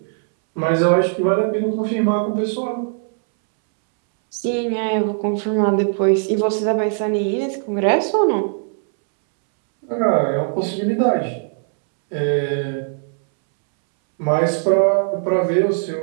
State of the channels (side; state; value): left; silent; 66 dB below the other